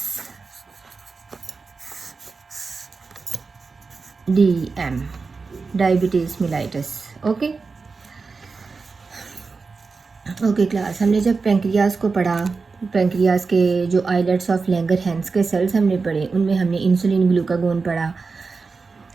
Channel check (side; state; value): left; quieter; 4.4 dB